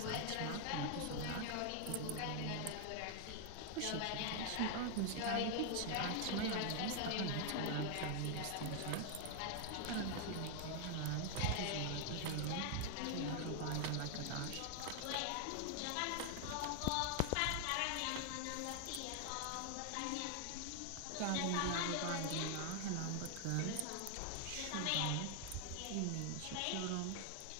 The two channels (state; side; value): different; both; correlation 0.00